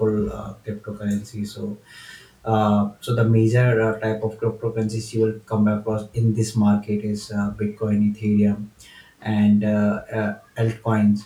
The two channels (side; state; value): both; identical; correlation 1.00